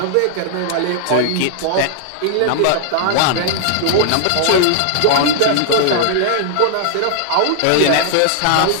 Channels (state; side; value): different; both; correlation 0.00